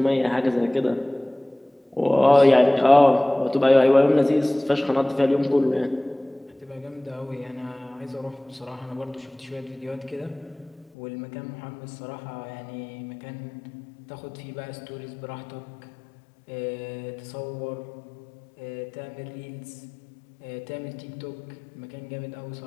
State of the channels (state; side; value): drops out; right; at 10.9 s